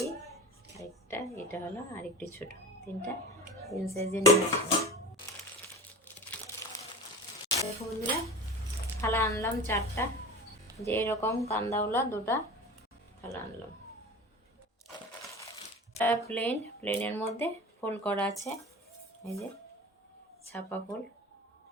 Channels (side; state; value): both; normal; correlation 0.34